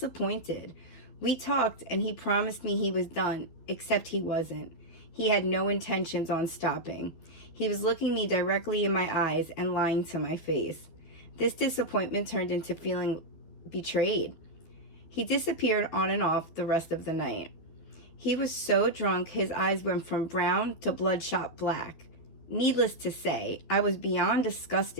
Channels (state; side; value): late; right; 12 ms